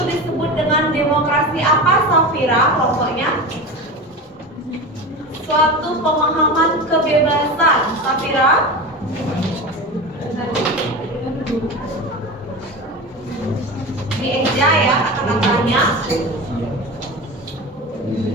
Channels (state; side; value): normal; both; correlation 0.27